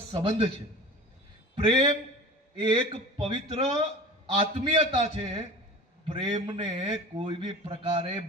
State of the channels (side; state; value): both; normal; correlation 0.37